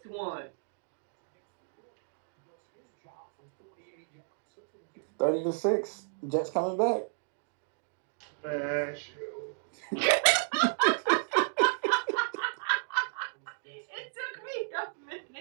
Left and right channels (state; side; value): silent; left; digital silence